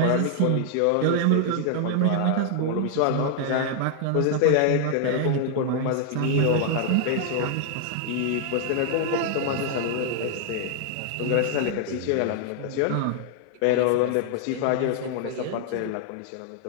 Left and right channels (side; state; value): both; different; correlation 0.00